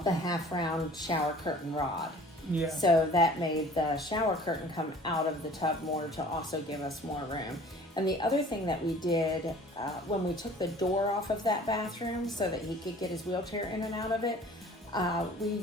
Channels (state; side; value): normal; both; correlation 0.49